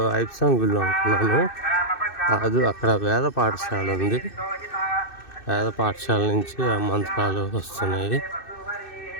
ఐప్సాంగ్ గుళ్ళు అనుకున్నాను. కాదు, అక్కడ వేద పాఠశాల ఉంది. వేద పాఠశాల నుంచి ఆ మంత్రాలు వస్తున్నాయి.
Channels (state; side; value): late; right; 2.6 ms